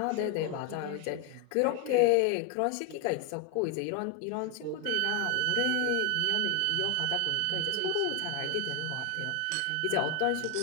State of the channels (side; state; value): both; different; correlation 0.01